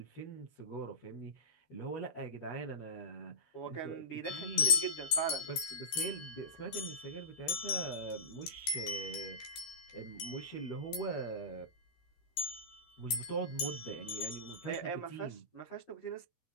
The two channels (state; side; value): late; right; 13 ms